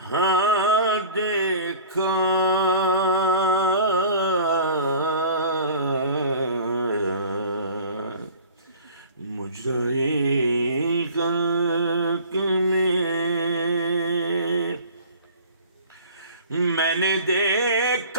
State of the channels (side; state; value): both; inverted; correlation -0.44